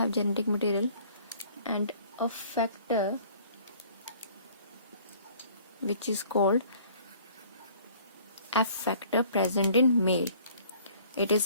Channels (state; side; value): inverted; both; correlation -0.54